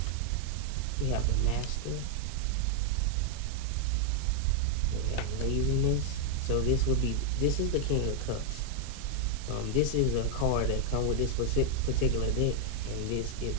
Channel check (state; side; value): different; both; correlation 0.00